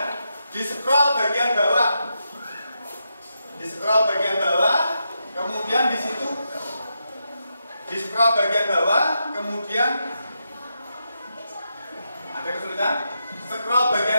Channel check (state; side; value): inverted; both; correlation -0.84